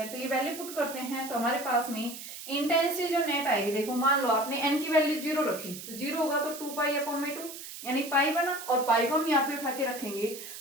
हैं, तो ये वैल्यू पुट करते हैं तो हमारे पास में इंटेंसिटी जो नेट आएगी, देखो मान लो आपने n की वैल्यू 0 रखी तो 0 होगा तो 2 पाई अपॉन में 2 यानी पाई बना, और पाई को हम यहाँ पे उठा के रखेंगे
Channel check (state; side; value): noise; right; hiss, 11 dB below the sound